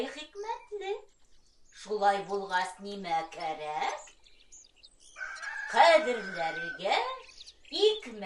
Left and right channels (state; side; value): identical; both; correlation 1.00